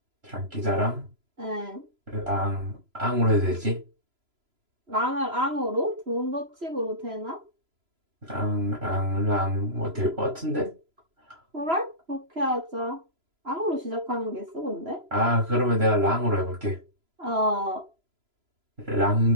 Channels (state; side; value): late; left; 3.0 ms